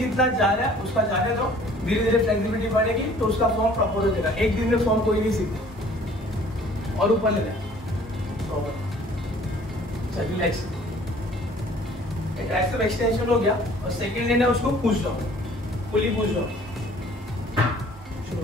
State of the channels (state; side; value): normal; both; correlation 0.54